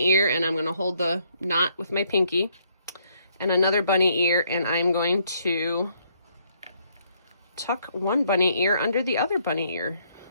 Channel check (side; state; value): both; inverted; correlation -0.70